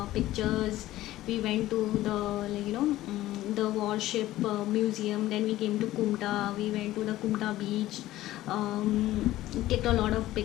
pictures. We went to the the warship museum. Then we came to Kumta. We went to the Kumta beach. Clicked a lot of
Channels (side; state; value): right; quieter; 15.5 dB